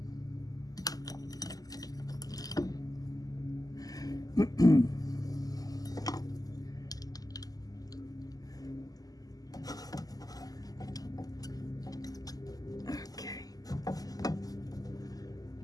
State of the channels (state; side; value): late; right; 0.17 ms